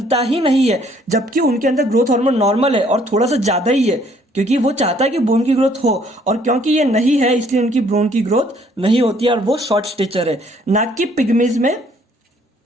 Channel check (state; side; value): normal; both; correlation 0.63